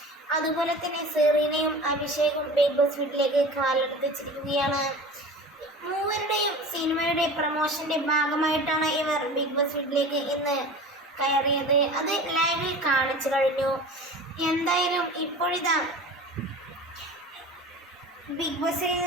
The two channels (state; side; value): normal; both; correlation 0.36